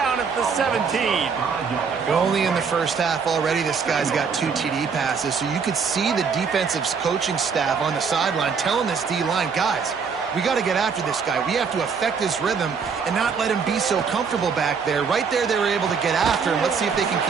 at the 17. Only in the first half already, this guy's got 2 TD passes, so you could see the defensive coaching staff on the sideline telling this D-line, guys, we got to get after this guy. We have to affect his rhythm and not let him be so comfortable back there. Right there, they were able to get after him. Let's see if they can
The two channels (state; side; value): quieter; left; 5.8 dB